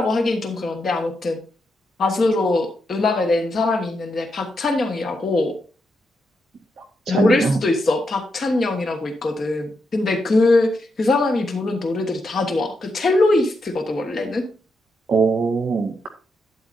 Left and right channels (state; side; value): normal; both; correlation 0.83